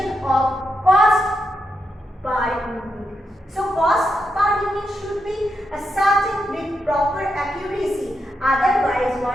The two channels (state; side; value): normal; both; correlation 0.84